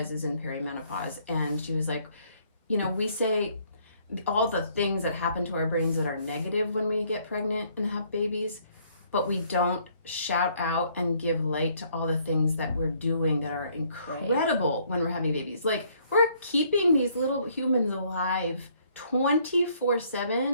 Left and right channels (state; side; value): inverted; both; correlation -0.65